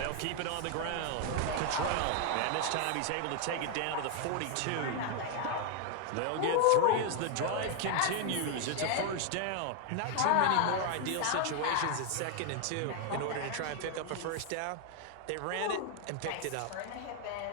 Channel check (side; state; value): both; different; correlation 0.00